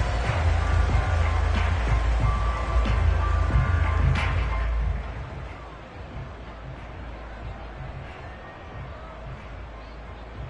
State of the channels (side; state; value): both; identical; correlation 1.00